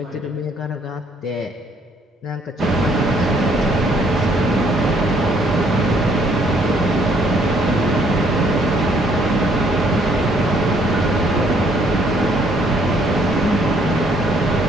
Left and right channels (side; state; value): both; normal; correlation 0.66